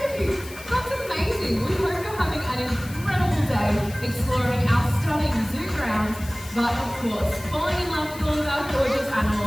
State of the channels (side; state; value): left; noise; hiss, 16 dB below the sound